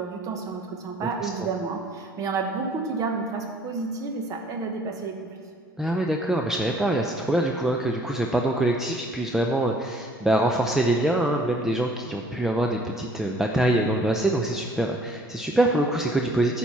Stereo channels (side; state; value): both; normal; correlation 0.58